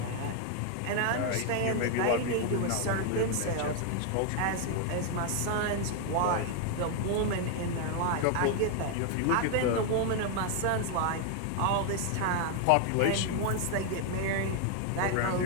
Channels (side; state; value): both; different; correlation 0.00